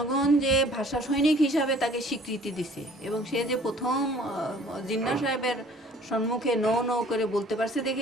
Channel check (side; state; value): both; normal; correlation 0.53